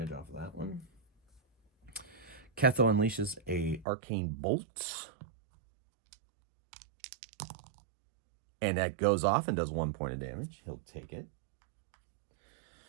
off of that one. Ketho unleashes a arcane bolt. And that goes off and does 1 point of damage. He'll take it.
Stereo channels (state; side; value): drops out; left; at 3.9 s